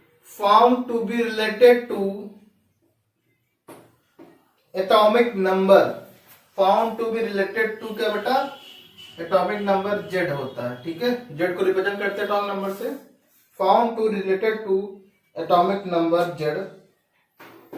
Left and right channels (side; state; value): both; identical; correlation 1.00